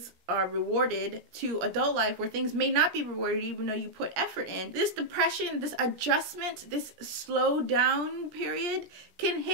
are rewarded to adult life where things may not be rewarded even though you put effort in. This depression, this adjustment, this slow down period can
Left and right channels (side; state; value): left; late; 17 ms